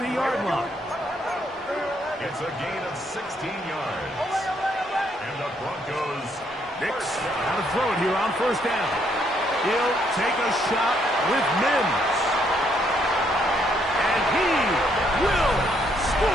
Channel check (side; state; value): both; normal; correlation 0.71